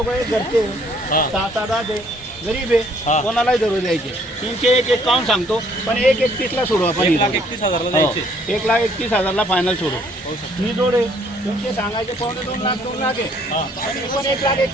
एक घरचे 7-8 आहे, गरीब आहे, कोणालाही धरू द्यायचे. 301 सांगतो, पण 1,31,000 सोडू आपण. 1,31,000 द्यायचे. 1,31,000 फायनल सोडू. ही जोड आहे तुमचे सांगायचे 2.5 लाख 2 लाख आहे, पण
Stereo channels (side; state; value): both; normal; correlation 0.63